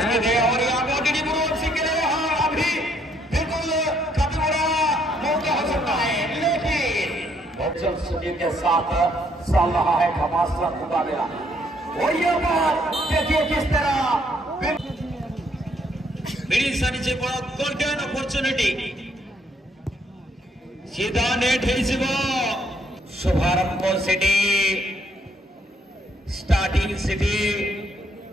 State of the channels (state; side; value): normal; both; correlation 0.69